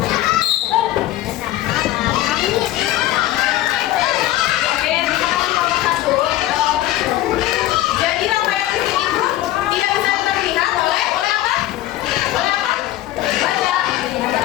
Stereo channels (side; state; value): right; quieter; 14.9 dB